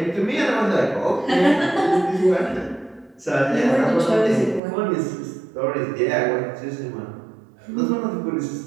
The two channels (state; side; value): drops out; left; at 4.6 s